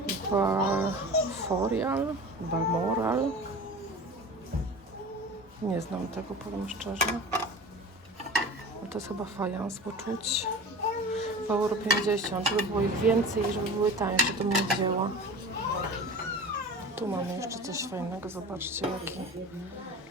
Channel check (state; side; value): normal; both; correlation 0.36